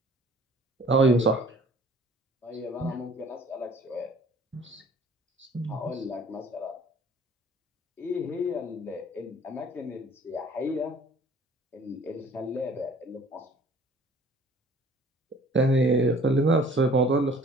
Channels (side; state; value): both; normal; correlation 0.52